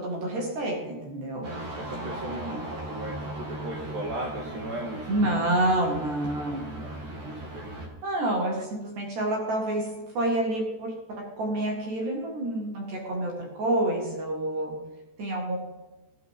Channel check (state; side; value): late; left; 14 ms